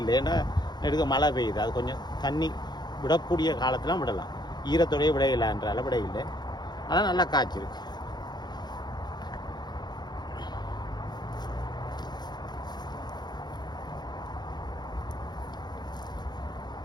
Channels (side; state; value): right; late; 0.21 ms